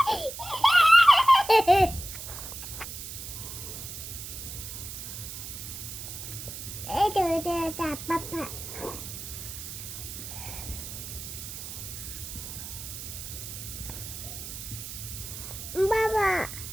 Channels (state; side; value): noise; right; hiss, 9 dB below the sound